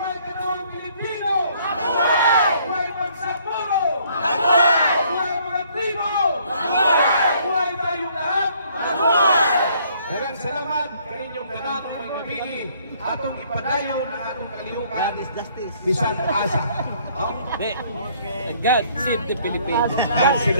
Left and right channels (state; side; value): inverted; both; correlation -0.63